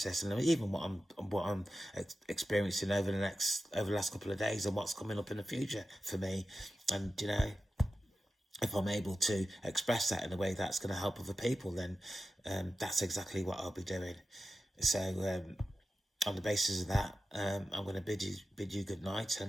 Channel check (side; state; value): both; normal; correlation 0.93